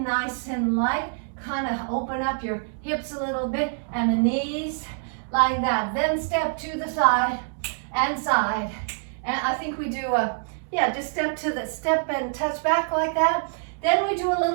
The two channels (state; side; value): silent; left; digital silence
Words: and light. kind of open up your hips a little bit and the knees like that. Then step to the side and side. And I think we do just step and touch back like that. Then we do a